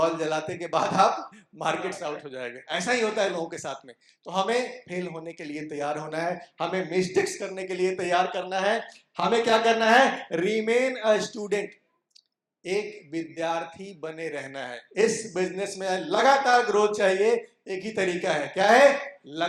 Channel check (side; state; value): both; identical; correlation 1.00